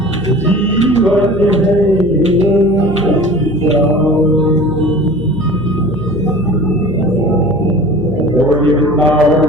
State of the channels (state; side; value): noise; left; hum, 14 dB below the sound